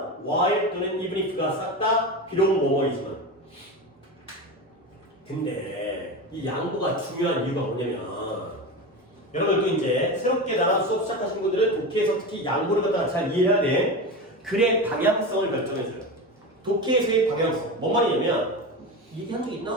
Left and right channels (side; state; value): both; normal; correlation 0.23